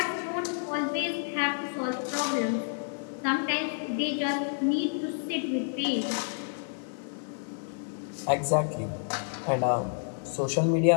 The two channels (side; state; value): right; silent; 58 dB below the other